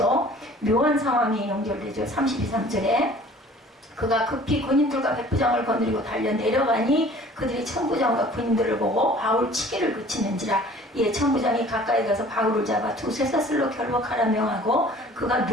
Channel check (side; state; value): both; normal; correlation 0.50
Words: 묘한 상황이 연결되죠. 32, 3절에 그가 급히 군인들과 백부장을 거느리고 달려 내려가니 그들이 천부장과 군인들을 보고 바울 치기를 그치는지라. 천부장이 가까이 가서 바울을 잡아 두 쇠사슬로 결박하라 명하고 그가